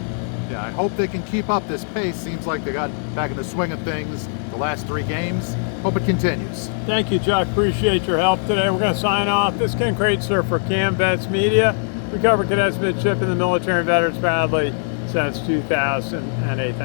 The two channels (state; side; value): silent; right; 57 dB below the other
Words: Yeah, I hope they can keep up this pace. Seems like they got back in the swing of things the last 3 games. Hope it continues. Thank you, Chuck. Appreciate your help today. We're going to sign off. This is Ken Kraetzer for Cam Vets Media. We cover cadets, midship, and the military and veterans proudly since 2008.